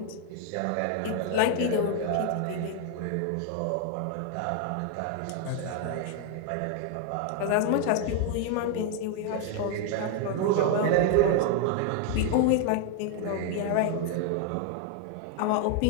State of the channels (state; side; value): different; both; correlation 0.00